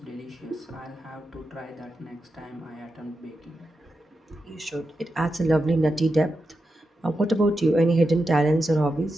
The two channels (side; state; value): both; normal; correlation 0.88